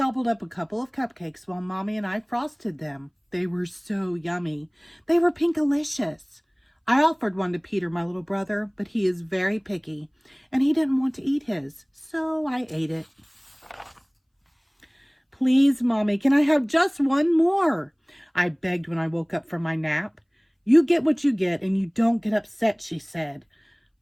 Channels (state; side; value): identical; both; correlation 1.00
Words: up a couple of cupcakes while Mommy and I frosted them. They were so yummy. They were Pinkalicious. I offered one to Peter, my little brother, but he is very picky, and he didn't want to eat his, so I ate it. Please, Mommy, can I have just one more? I begged when I woke up from my nap. You get what you get, and you don't get upset, she said.